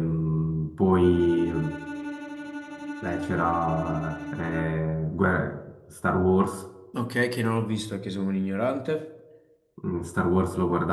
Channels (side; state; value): both; identical; correlation 1.00